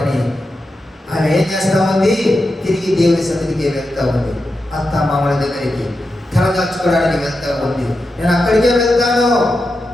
అని ఆమె ఏం చేస్తా ఉంది, తిరిగి దేవుని సన్నిధికి వెళ్తా ఉంది, అత్త మామల దగ్గరికి తలదాచుకోవడానికి వెళ్తా ఉంది. నేను అక్కడికే వెళ్తాను,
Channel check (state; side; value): normal; both; correlation 0.89